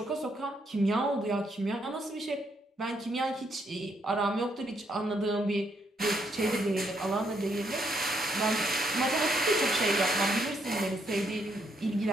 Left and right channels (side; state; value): both; normal; correlation 0.74